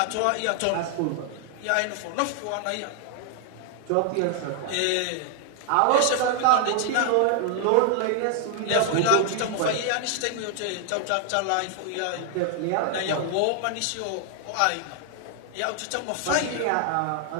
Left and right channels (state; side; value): different; both; correlation 0.00